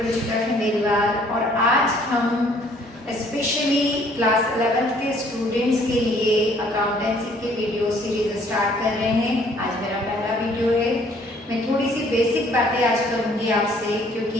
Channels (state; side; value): normal; both; correlation 0.60